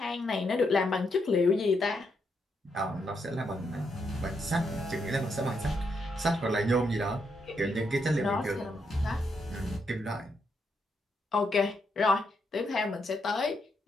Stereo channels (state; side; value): normal; both; correlation 0.79